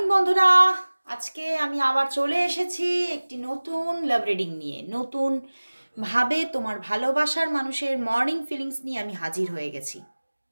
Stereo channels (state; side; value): inverted; both; correlation -1.00